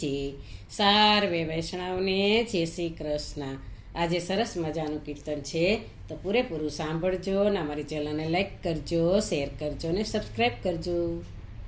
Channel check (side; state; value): both; identical; correlation 1.00